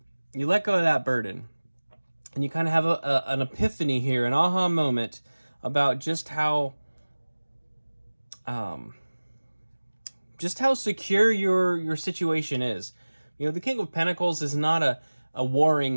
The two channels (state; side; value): inverted; both; correlation -1.00